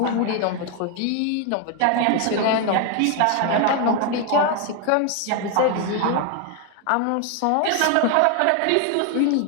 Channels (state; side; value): different; both; correlation 0.01